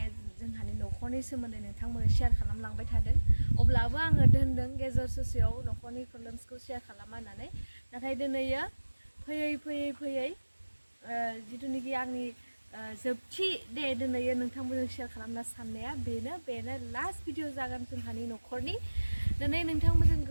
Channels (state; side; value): inverted; both; correlation -1.00